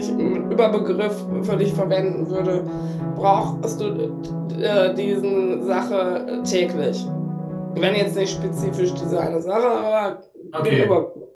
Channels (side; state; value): both; identical; correlation 1.00